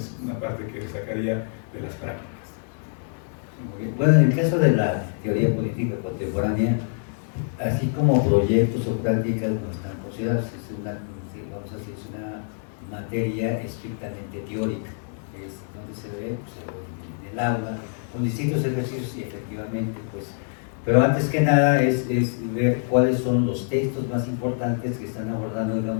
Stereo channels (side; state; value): right; silent; digital silence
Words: una parte que sacaría de las prácticas. Bueno, en el caso de la teoría política contemporánea, así como proyectos o prácticas no están considerados, es una materia estrictamente teórica, es donde se ve pues, en el aula, con distintos ejercicios, y efectivamente, pues, pero antes que nada es ver cuáles son los textos más importantes que están abordando,